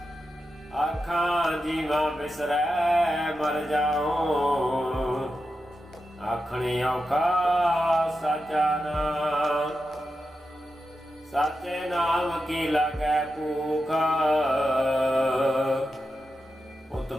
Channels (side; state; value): both; normal; correlation 0.89